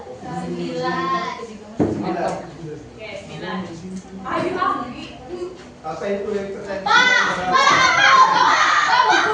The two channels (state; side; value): identical; both; correlation 1.00